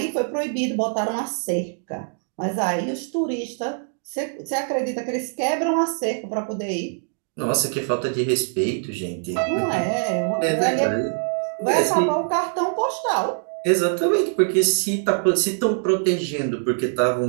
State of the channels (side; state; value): left; silent; 63 dB below the other